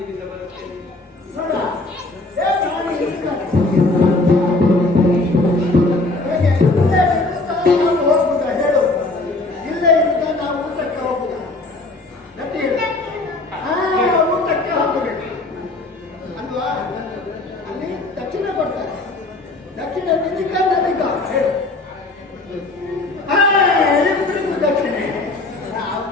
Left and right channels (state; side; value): quieter; right; 3.0 dB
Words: ಬರುತ್ತೇನೆ. ನೋಡುವ. ಹೋಗುದಾ ಹೇಳು, ಇಲ್ಲೇ ಇರುತ್ತಾ ನಾವು ಊಟಕ್ಕೆ ಹೋಗುದಾ? ಗಟ್ಟಿ ಹೇಳು. ಊಟಕ್ಕೆ ಹೋಗಬೇಕು ಅಲ್ವಾ? ಅಲ್ಲಿ ದಕ್ಷಿಣ ಕೊಡ್ತಾರೆ. ದಕ್ಷಿಣ ನಿಧಿಕ ನದಿಕ ಹೇಳು. ಇಬ್ಬರಿಗೂ ದಕ್ಷಿಣೆ.